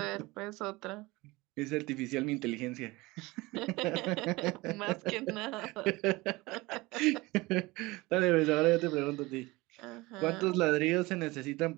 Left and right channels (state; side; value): quieter; left; 21.8 dB